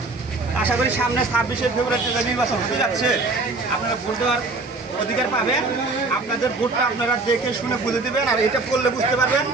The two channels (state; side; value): quieter; left; 3.4 dB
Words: আশা করি সামনে ২৬শে ফেব্রুয়ারিতে যে নির্বাচন হতে যাচ্ছে আপনারা ভোট দেওয়ার অধিকার পাবেন। আপনাদের ভোটটা আপনারা দেখে শুনে বুঝে দেবেন, আর এটা করলে বুঝতে পারবেন